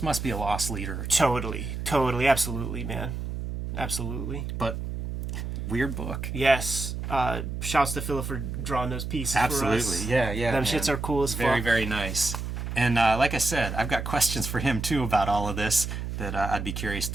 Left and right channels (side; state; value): right; noise; hum, 5 dB below the sound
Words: must be a loss leader. Totally. Absolutely, man. Absolutely. But weird book. Yes. Shouts to Philip for drawing those pieces for us. Absolutely. Yeah. Them shits are cool as fuck. Very, very nice. And like I said, I've got questions for him, too, about all of this that I'd be curious